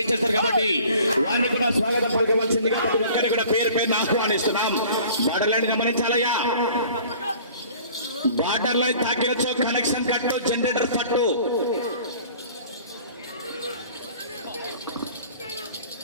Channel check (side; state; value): both; inverted; correlation -0.48